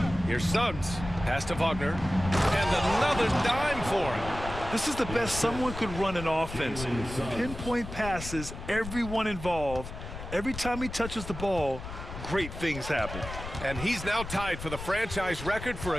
Here's Suggs. Pass to Wagner. And another dime for him. This is the best someone could run an offense. Pinpoint passes, everyone involved. Every time he touches the ball, great things happen. And he's now tied for the franchise record for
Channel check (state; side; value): noise; left; rumble, 9 dB below the sound